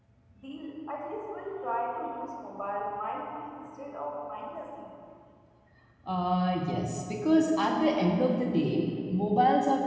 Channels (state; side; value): identical; both; correlation 1.00